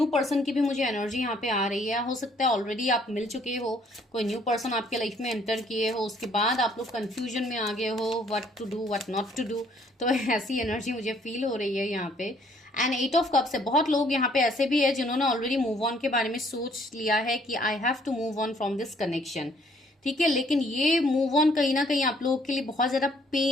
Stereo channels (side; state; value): both; normal; correlation 0.63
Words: पर्सन की भी मुझे एनर्जी यहाँ पे आ रही है। हो सकता है ऑलरेडी आप मिल चुके हो, कोई न्यू पर्सन आपके लाइफ में एंटर किए हो, उसके बाद आप लोग कंफ्यूजन में आ गए हो what to do what not to do, तो ऐसी एनर्जी मुझे फील हो रही है यहाँ पे। एंड 8 ऑफ कप्स है, बहुत लोग यहाँ पे ऐसे भी है जिन्होंने ऑलरेडी मूव ऑन के बारे में सोच लिया है कि I have to move on from this connection. ठीक है, लेकिन ये मूव ऑन कहीं ना कहीं आप लोगों के लिए बहुत ज्यादा